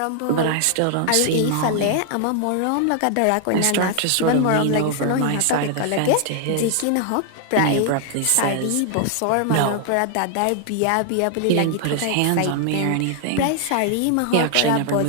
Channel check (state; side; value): different; both; correlation 0.00